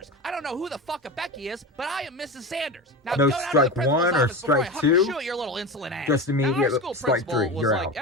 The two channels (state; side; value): normal; both; correlation 0.25